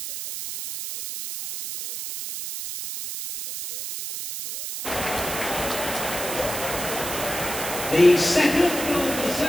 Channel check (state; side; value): noise; right; hiss, 6 dB below the sound